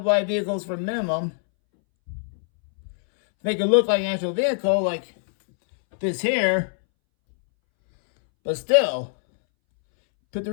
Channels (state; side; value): silent; right; 63 dB below the other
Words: wide vehicles for minimum. Make it look like an actual vehicle, like this here. But still, put the